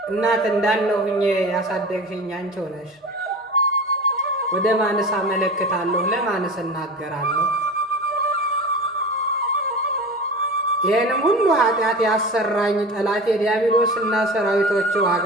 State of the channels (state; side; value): normal; both; correlation 0.33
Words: እናት እንዳለው ሁኜ ያሳደግሽኝ አንቺው ነሽ። ወደ ማንስ አመለክታለሁ? ለማንስ እናገራለሁ? ይህንም ሁሉ ኃጢአት ያሰራኝ ጠላቴ ዲያብሎስና ሰራዊቶቹ